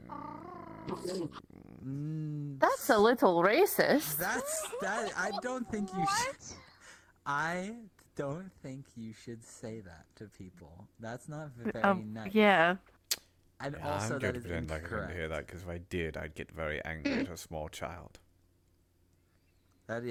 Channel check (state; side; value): identical; both; correlation 1.00